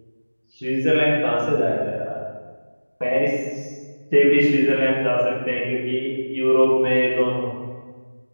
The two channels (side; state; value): both; inverted; correlation -1.00